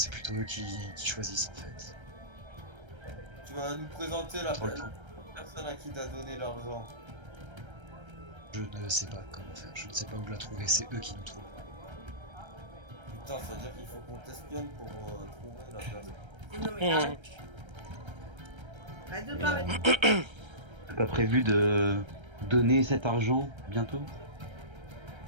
plutôt eux qui choisissent en fait. Tu vas nous présenter la Trop le temps. personne à qui t'as donné l'argent. Je ne sais pas comment faire, je ne sais pas où la trouver, c'est eux qui nous trouvent. Putain, ça veut dire qu'il faut qu'on t'espionne pour trouver la personne. Non mais arrête. Arrête de Et, parler. T'as pas prévu de donner cet argent bientôt?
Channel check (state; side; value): late; left; 1.3 ms